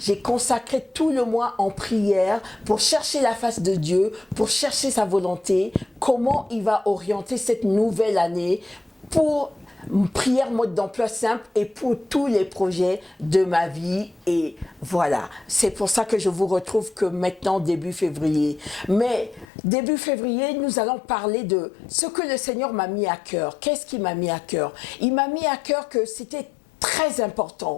consacré tout le mois en prière pour chercher la face de Dieu, pour chercher sa volonté, comment il va orienter cette nouvelle année pour une prière mode d'emploi simple et pour tous les projets de ma vie. Et voilà, c'est pour ça que je vous retrouve que maintenant, début février. Mais début février, nous allons parler de ce que le Seigneur m'a mis à cœur. Qu'est-ce qu'il m'a mis à cœur? Il m'a mis à cœur que c'était très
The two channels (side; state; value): right; drops out; at 19.5 s